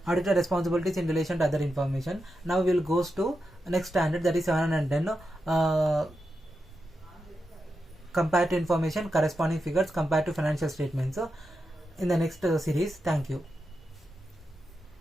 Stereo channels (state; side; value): normal; both; correlation 0.88